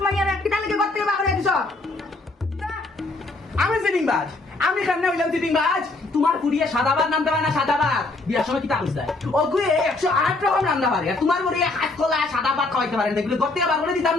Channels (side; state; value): right; quieter; 3.2 dB